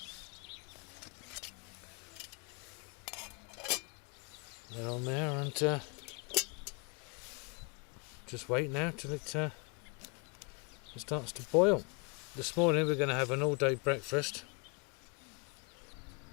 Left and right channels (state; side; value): quieter; right; 33.6 dB